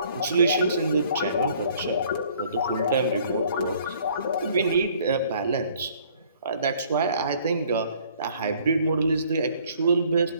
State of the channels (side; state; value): both; inverted; correlation -0.58